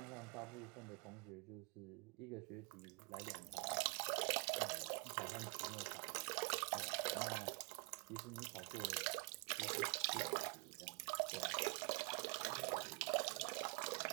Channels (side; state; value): left; quieter; 34.3 dB